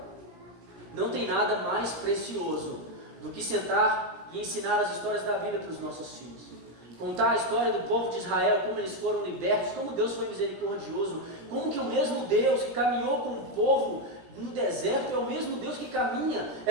Não tem nada mais precioso do que sentar e ensinar as histórias da Bíblia para os nossos filhos. Contar a história do povo de Israel, como eles foram libertos, como Deus foi misericordioso, como que o mesmo Deus que caminhou com o povo no deserto é o mesmo Deus que caminha.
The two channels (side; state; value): left; late; 17 ms